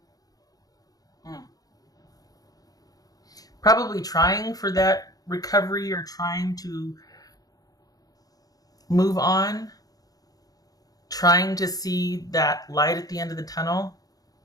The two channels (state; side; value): late; right; 0.18 ms